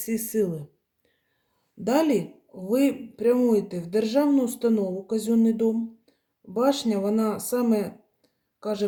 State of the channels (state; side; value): identical; both; correlation 1.00